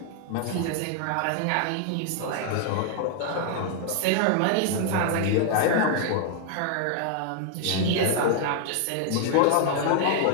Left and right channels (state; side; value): different; both; correlation 0.00